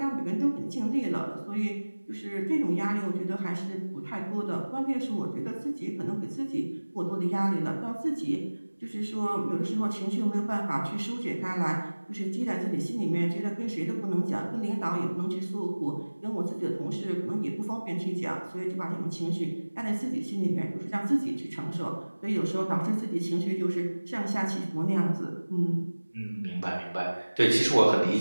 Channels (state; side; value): inverted; both; correlation -1.00